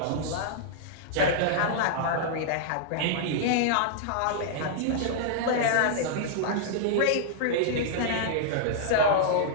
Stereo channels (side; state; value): both; different; correlation -0.02